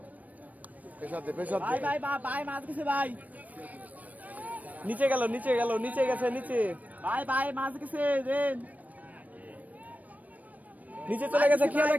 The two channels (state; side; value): late; left; 0.074 ms